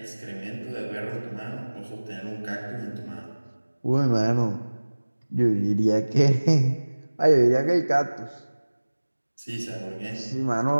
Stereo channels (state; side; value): inverted; both; correlation -1.00